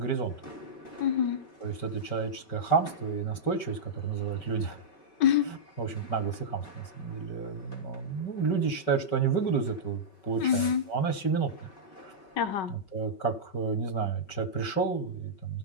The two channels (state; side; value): late; right; 5.3 ms